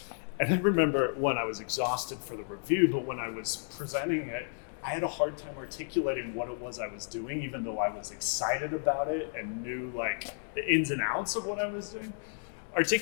And I remember when I was exhausted for the review, but when I was presenting it, I had a hard time articulating what it was I was doing, even though I was excited about it and knew like the ins and outs of what I was doing.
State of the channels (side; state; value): right; silent; 56 dB below the other